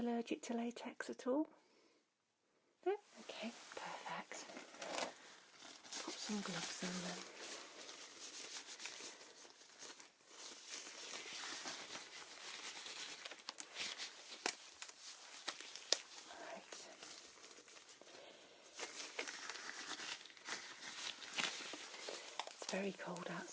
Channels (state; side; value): identical; both; correlation 1.00